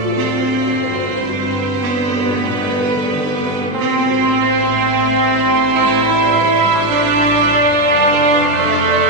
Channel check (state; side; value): late; left; 20 ms